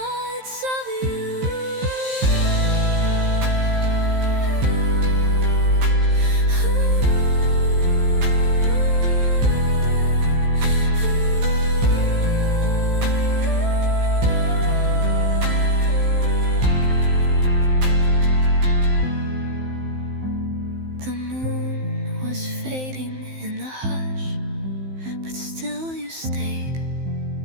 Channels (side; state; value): left; late; 15 ms